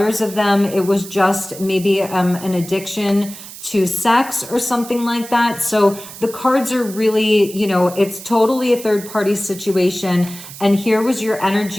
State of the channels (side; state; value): right; noise; hiss, 14 dB below the sound